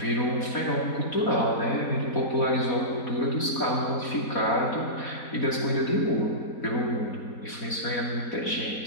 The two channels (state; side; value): late; right; 4.2 ms